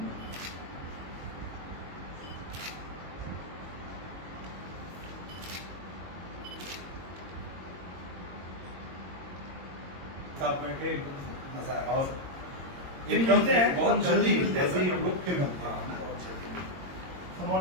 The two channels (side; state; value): left; late; 22 ms